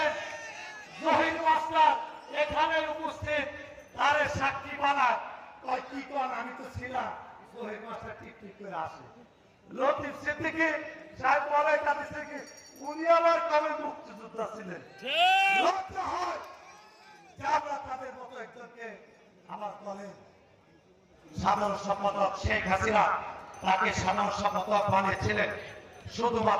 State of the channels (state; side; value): identical; both; correlation 1.00